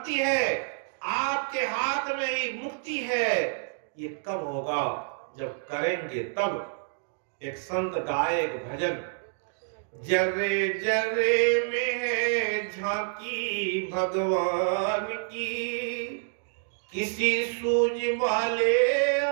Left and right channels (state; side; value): silent; left; digital silence